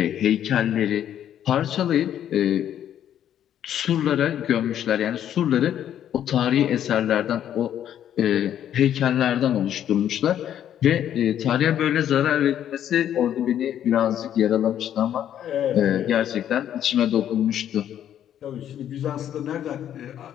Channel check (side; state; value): right; quieter; 10.4 dB